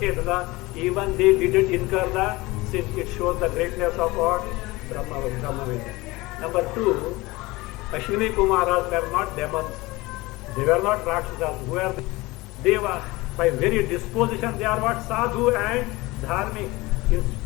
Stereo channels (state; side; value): quieter; right; 21.4 dB